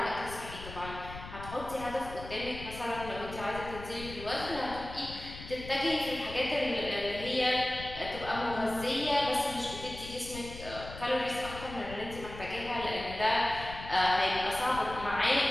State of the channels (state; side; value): noise; left; rumble, 12 dB below the sound